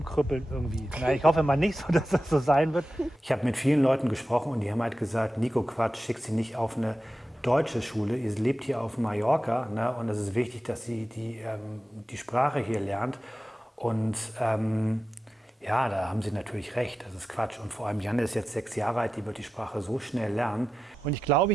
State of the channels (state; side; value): normal; both; correlation 0.93